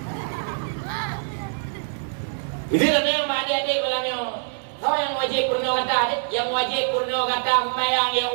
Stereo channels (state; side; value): silent; left; digital silence